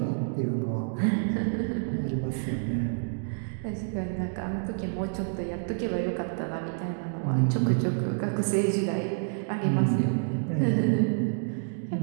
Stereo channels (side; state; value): left; silent; digital silence